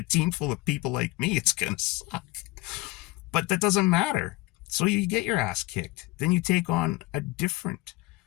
team full of people like me, it's going to suck. But that doesn't matter. So you get your ass kicked. Then you take on a different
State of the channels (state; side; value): quieter; right; 20.8 dB